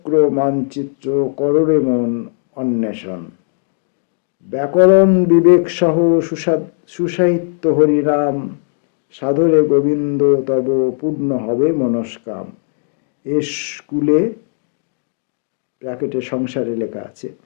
মানচিত্র কররে মন অন্বেষণ। ব্যাকরণ বিবেক সহ সুসাহিত্য হরিনাম, সাধরে গোবিন্দ তব পূর্ণ হবে মনস্কাম। এ স্কুলে ব্র্যাকেটে সংসারে লেখা আছে,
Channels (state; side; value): silent; right; digital silence